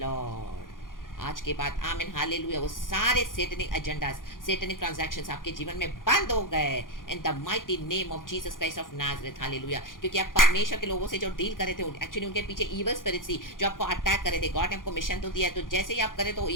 Lord. आज के बाद आमीन हालेलुया वो सारे सेटनिक एजेंडास, सेटनिक ट्रांजैक्शंस आपके जीवन में बंद हो गए इन the mighty name of Jesus Christ of Nazareth. Hallelujah. क्योंकि आप परमेश्वर के लोगों से जो डील कर रहे थे, एक्चुअली उनके पीछे इविल स्पिरिट्स थी जो आपको अटैक कर रहे थे. गॉड ने आपको मिशन तो दिया है, तो जैसे ही आप करे तो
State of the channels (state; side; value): late; right; 0.90 ms